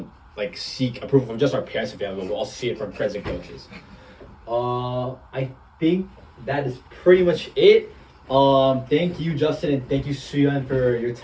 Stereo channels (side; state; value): both; identical; correlation 1.00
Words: like seek approval from just our parents and family, but we'll also see it from friends and coaches. I think that is pretty much it. Thank you, Justin, and thank you, Suyun, for your